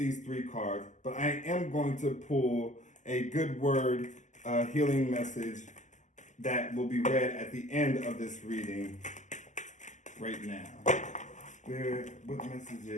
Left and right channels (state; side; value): late; right; 0.35 ms